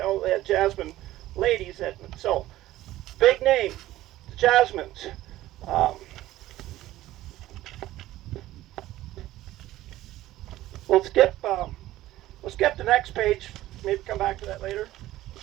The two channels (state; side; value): quieter; left; 15.4 dB